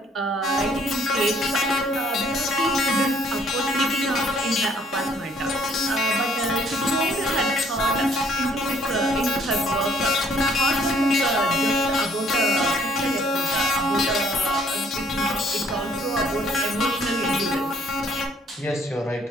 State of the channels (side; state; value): both; normal; correlation 0.62